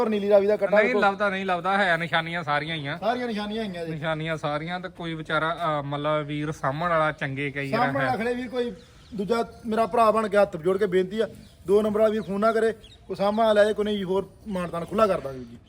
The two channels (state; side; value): identical; both; correlation 1.00